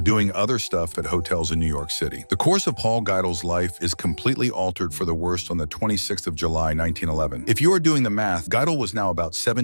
doing other stuff at hotels in New York City. The course of Paul Geidel's life is completely altered for the worst on the 26th of July, 1911. If you are doing the math, Geidel was now about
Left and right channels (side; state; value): both; inverted; correlation -1.00